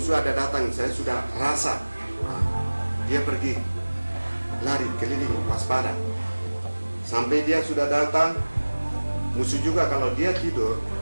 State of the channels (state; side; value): inverted; both; correlation -1.00